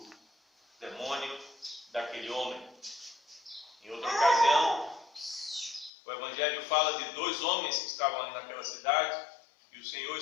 demônio daquele homem. Em outra ocasião, o Evangelho fala de dois homens que estavam ali naquela cidade e o Senhor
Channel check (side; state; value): right; drops out; at 5.9 s